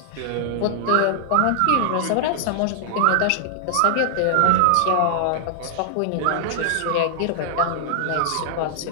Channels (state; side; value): different; both; correlation 0.00